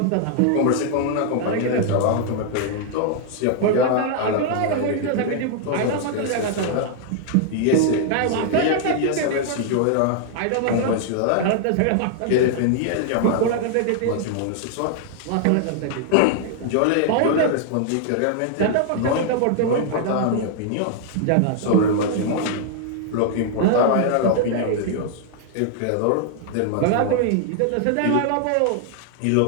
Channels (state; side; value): different; both; correlation 0.00